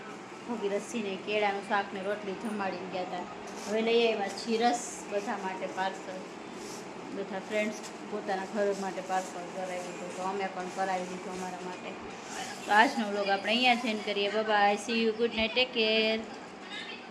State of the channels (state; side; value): identical; both; correlation 1.00